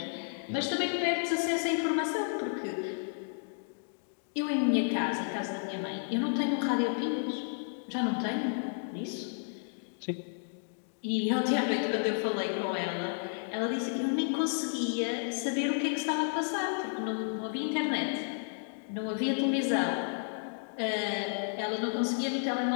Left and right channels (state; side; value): silent; right; digital silence